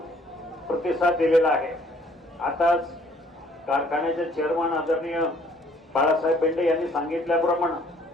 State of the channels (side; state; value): both; normal; correlation 0.60